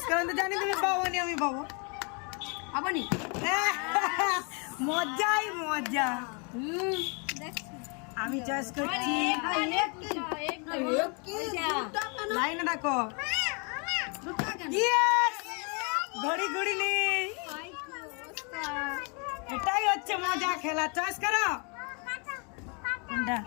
করেন তো, জানি তুমি পাবো নি, আমি পাবো। আপনি মজাই মজা। আমি চয়েস করছি, লাইনে রাখো। ঘড়ি ঘড়ি নেই, এটাই হচ্ছে মজা খেলা। চয়েস করো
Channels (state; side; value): quieter; right; 34.7 dB